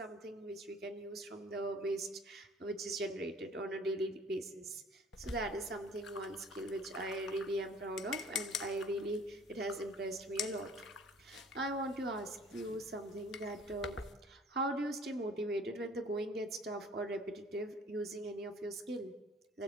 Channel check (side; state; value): both; normal; correlation 0.51